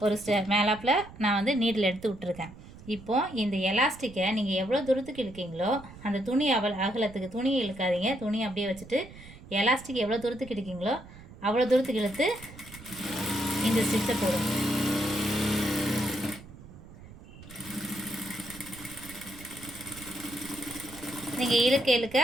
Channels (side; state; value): right; noise; rumble, 18 dB below the sound